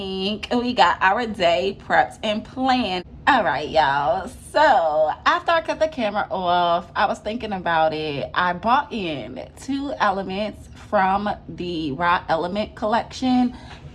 we got our day prepped and planned. All right, y'all, so after I cut the camera off, I was thinking about it. I bought in 2 elements from the Raw Element collection,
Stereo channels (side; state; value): both; identical; correlation 1.00